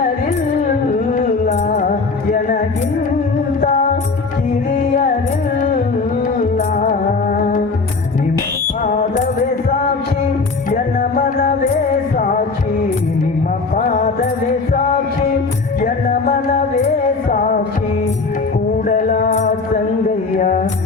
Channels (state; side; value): quieter; right; 4.2 dB